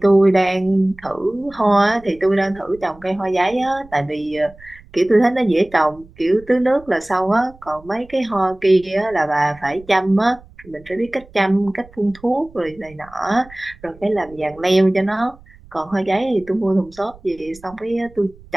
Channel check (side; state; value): right; noise; rumble, 24 dB below the sound